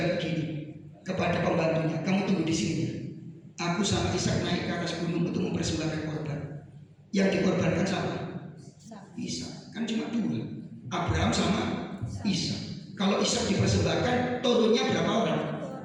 begini kepada pembantunya, kamu tunggu di sini. Aku sama Ishak naik ke atas gunung untuk mempersembahkan korban. Yang dikorbankan siapa? Ishak. Kan cuma dua, Abraham sama Ishak. Kalau Ishak dipersembahkan, turunnya berapa orang?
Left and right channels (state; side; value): identical; both; correlation 1.00